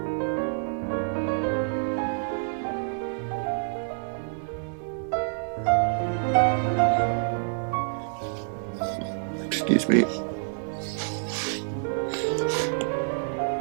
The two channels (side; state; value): left; silent; digital silence